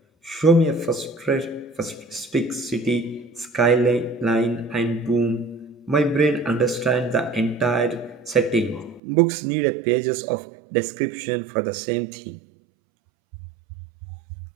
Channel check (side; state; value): left; drops out; at 9.0 s